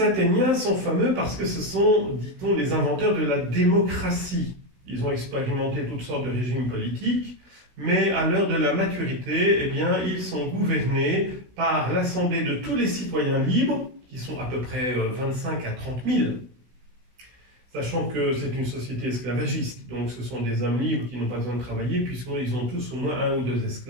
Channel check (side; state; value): left; late; 16 ms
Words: Athéniens sont fameux parce que ce sont, dit-on, les inventeurs de la démocratie. Ils ont expérimenté toutes sortes de régimes politiques, mais à l'heure de la maturité, eh bien, ils sont gouvernés par l'assemblée de tous les citoyens libres, qui sont à peu près 25 à 30 000, sachant que c'est une société esclavagiste, donc ce sont des hommes libres qui n'ont pas besoin de travailler, puisqu'ils ont tous au moins un ou deux